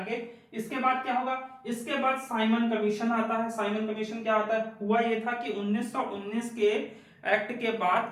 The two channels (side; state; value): both; identical; correlation 1.00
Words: इसके बाद क्या होगा, इसके बाद साइमन कमीशन आता है। साइमन कमीशन क्या आता है, हुआ ये था कि 1919 के एक्ट के बाद